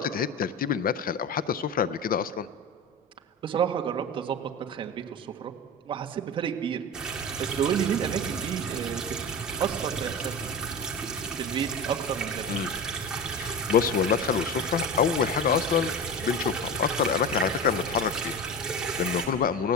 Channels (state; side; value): normal; both; correlation 0.27